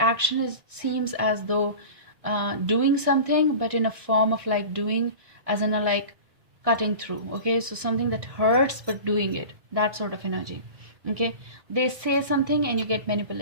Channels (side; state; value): left; late; 1.6 ms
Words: is seems as though doing something, but in a form of like doing as in a like cutting through. Okay, so something that hurts but doing it, that sort of energy. Okay, they say something and you get